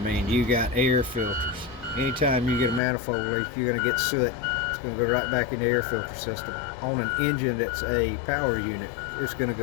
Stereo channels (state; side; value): drops out; right; at 2.8 s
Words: you got air filters. Anytime you get a manifold leak, you're going to get soot. It's going to go right back in the air filter system. On an engine that's a power unit, it's going to